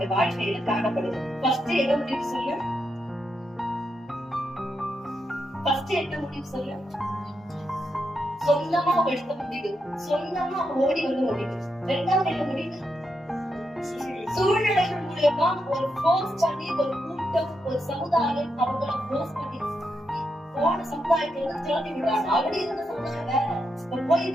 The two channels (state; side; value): normal; both; correlation 0.83